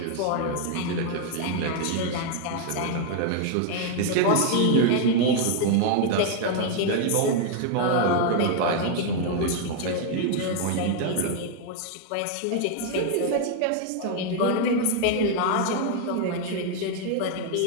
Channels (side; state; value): both; different; correlation 0.00